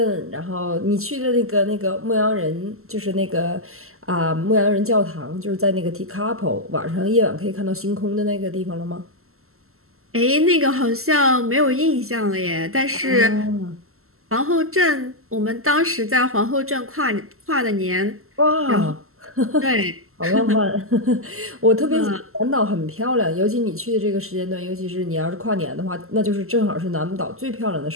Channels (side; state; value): left; late; 0.62 ms